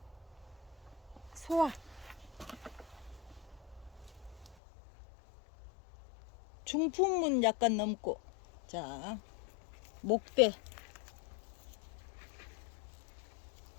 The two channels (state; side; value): drops out; right; at 4.5 s